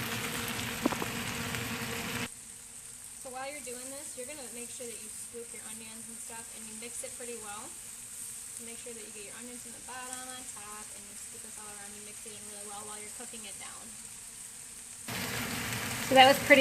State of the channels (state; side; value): identical; both; correlation 1.00